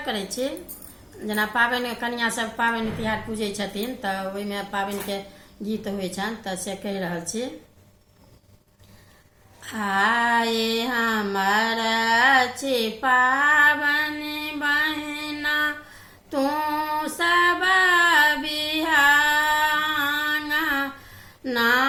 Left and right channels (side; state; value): both; identical; correlation 1.00